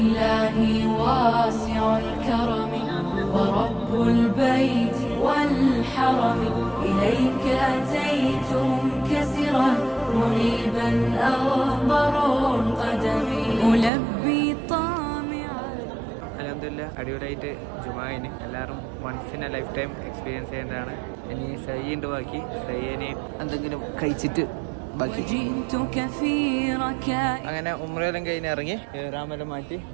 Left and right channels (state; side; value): drops out; left; at 13.9 s